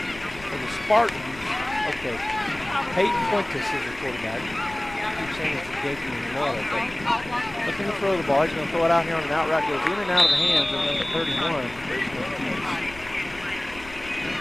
For the Spartans, okay, Peyton Fuentes is the quarterback. I keep saying it's a Xavier and Laura, but looking to throw the ball. He's going to throw it out here on an out route. Goes in and out of the hands of number 31, Grayson Keys.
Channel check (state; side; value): noise; left; rumble, 18 dB below the sound